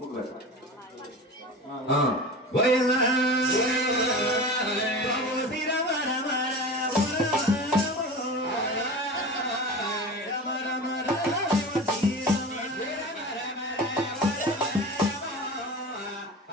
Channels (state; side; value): normal; both; correlation 0.32